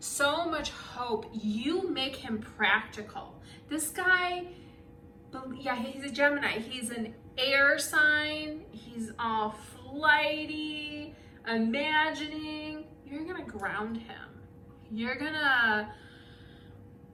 much hope. You make him practical. This guy, yeah, he's a Gemini. He's an air sign. He's all flighty, imagining. You're gonna ground him. You're gonna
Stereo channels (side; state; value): both; identical; correlation 1.00